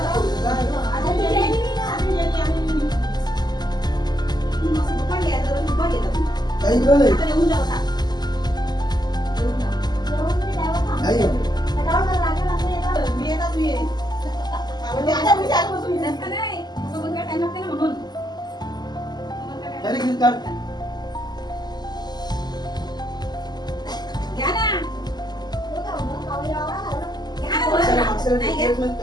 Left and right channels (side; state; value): right; late; 0.20 ms